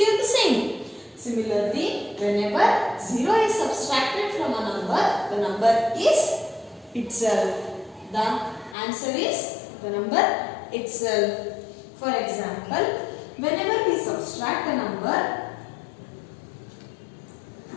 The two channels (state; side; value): drops out; right; at 8.8 s